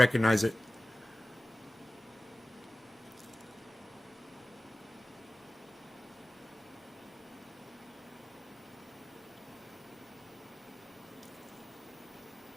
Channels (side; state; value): both; normal; correlation 0.96